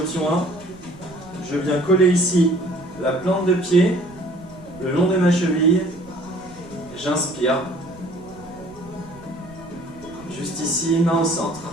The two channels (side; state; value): right; noise; rumble, 21 dB below the sound